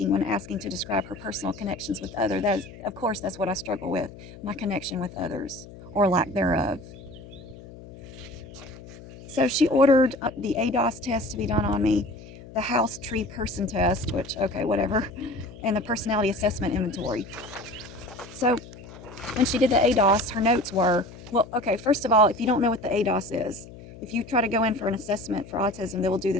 when asking to describe her personal connections with others. Of course, that's what I struggle with, my connection with others, or lack thereof. So she ordered the ADOS test to be done on me, the house tree person test, which, okay, whatever, and the personality assessment inventory. So when she did the ADOS, her notes were, well, okay, first of all, if you don't know what the ADOS is, if you try to go in for an assessment for autism, they will do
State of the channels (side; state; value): left; noise; hum, 17 dB below the sound